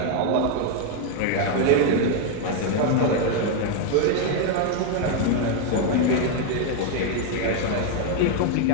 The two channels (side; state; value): both; different; correlation 0.01